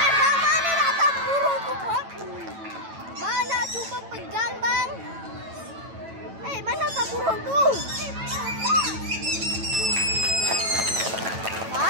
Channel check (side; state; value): left; late; 9.1 ms